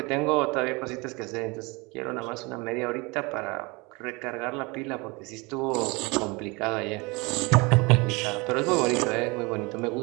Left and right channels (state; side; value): quieter; left; 26.5 dB